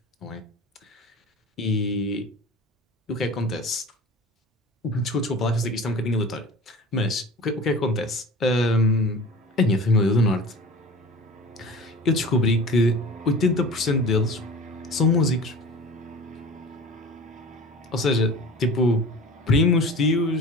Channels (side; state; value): both; normal; correlation 0.38